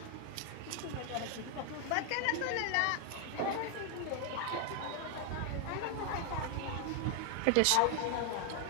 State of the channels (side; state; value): both; different; correlation 0.00